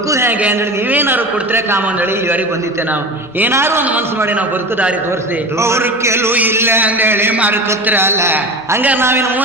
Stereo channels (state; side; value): normal; both; correlation 0.31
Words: ಹೇಗೆ ಅಂದೇಳಿ ನೀವೇನಾದ್ರು ಕೊಡ್ತೀರ ಕಾಮ ಅಂದೇಳಿ ಇಲ್ಲಿವರೆಗೆ ಬಂದಿತ್ತೆ. ನಾವು ಏನಾದ್ರು ಒಂದು ಮನಸ್ಸು ಮಾಡಿ ನಾವು ಬದುಕು ದಾರಿ ತೋರಿಸಿ. ಅವ್ರ ಕೆಲವು ಇಲ್ಲ ಅಂದೇಳಿ ಮಾರ್ಕತ್ರಲ್ಲ. ಹಂಗಾರೆ